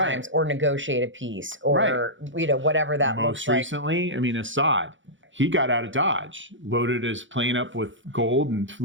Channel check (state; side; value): late; left; 0.56 ms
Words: or negotiate a peace, or whatever that looks like. Most recently, Assad. he got out of Dodge, loaded his plane up with gold and